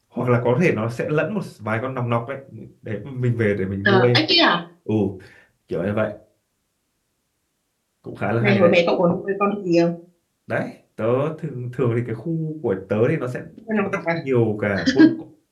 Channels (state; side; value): identical; both; correlation 1.00